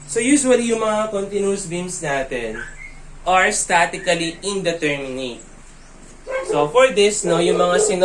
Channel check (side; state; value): both; identical; correlation 1.00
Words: So usually yung mga continuous beams natin are statically indeterminate. So for this, no, yung mga